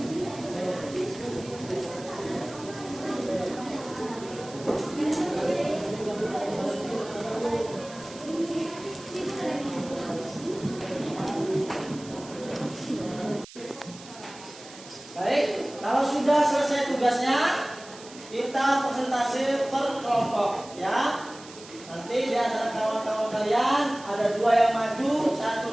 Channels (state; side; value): noise; right; hiss, 18 dB below the sound